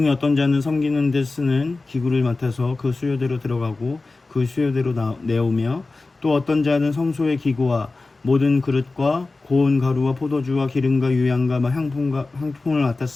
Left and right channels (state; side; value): quieter; right; 3.5 dB